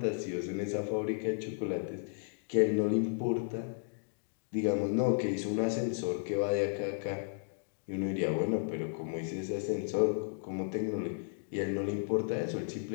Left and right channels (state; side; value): silent; right; digital silence